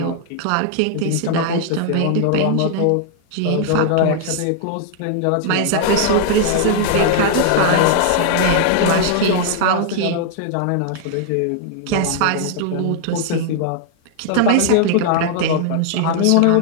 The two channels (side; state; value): both; different; correlation -0.01